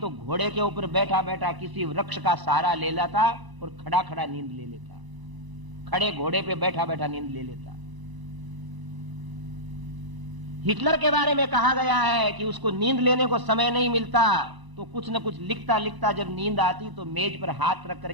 घोड़े के ऊपर बैठा बैठा किसी वृक्ष का सहारा ले लेता और खड़ा खड़ा नींद ले लेता, खड़े घोड़े पे बैठा बैठा नींद ले लेता। हिटलर के बारे में कहा गया है कि उसको नींद लेने को समय नहीं मिलता तो कुछ न कुछ लिखता लिखता जब नींद आती तो मेज पर हाथ रख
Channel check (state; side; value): late; left; 1.0 ms